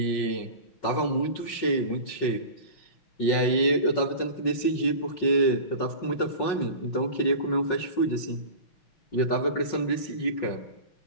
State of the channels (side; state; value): right; late; 5.6 ms